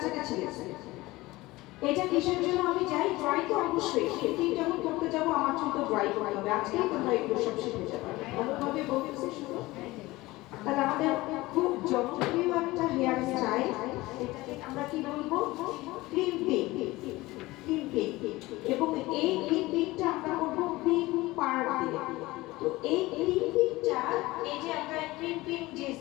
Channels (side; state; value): right; quieter; 19.7 dB